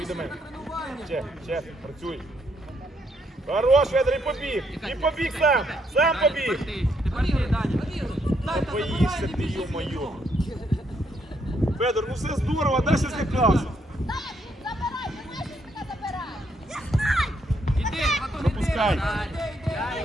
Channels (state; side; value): normal; both; correlation 0.74